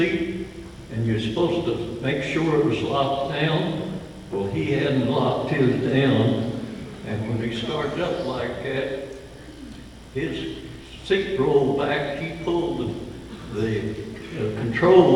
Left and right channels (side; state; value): both; identical; correlation 1.00